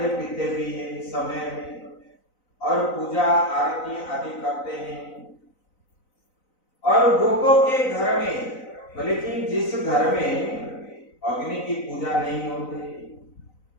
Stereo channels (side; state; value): right; late; 4.0 ms